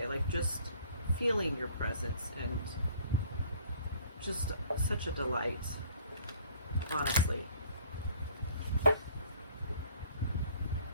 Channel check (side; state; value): both; inverted; correlation -0.55